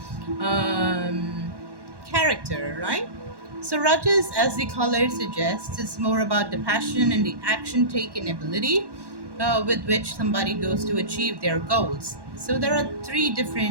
um, character, right? So Rajas, as the color suggests, is more about the passion and the action-taking ability with which somebody goes to achieve their goals. So there are three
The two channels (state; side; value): late; left; 1.1 ms